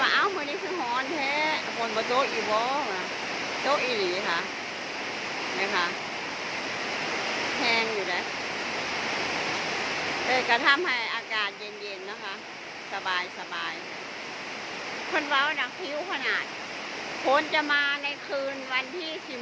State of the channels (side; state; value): both; identical; correlation 1.00